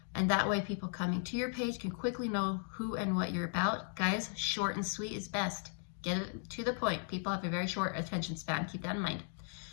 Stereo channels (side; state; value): right; silent; 53 dB below the other